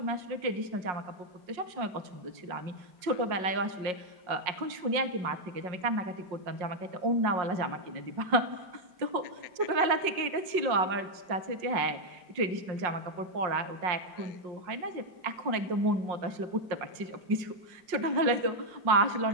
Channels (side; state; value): left; late; 5.5 ms